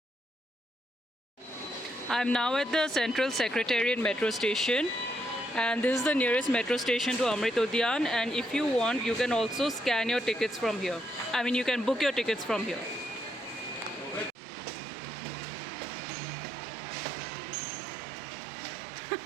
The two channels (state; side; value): drops out; left; at 14.4 s